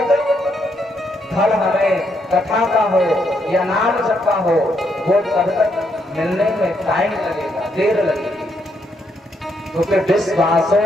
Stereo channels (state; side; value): normal; both; correlation 0.76